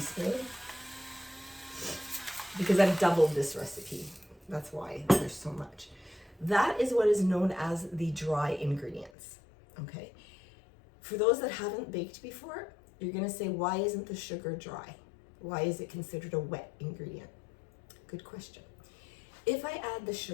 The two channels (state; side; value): drops out; right; at 9.1 s